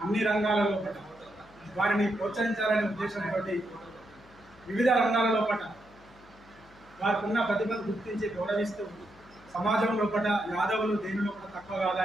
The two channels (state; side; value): noise; left; hum, 26 dB below the sound